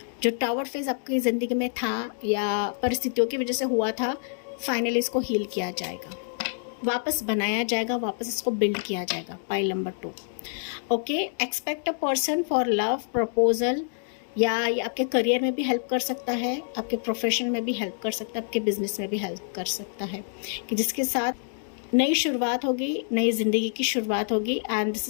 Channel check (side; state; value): right; silent; digital silence